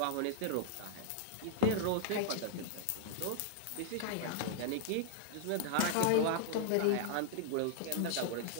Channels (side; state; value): both; different; correlation -0.01